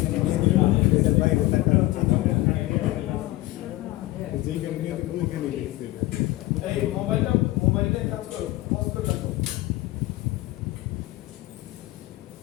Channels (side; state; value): right; quieter; 18.3 dB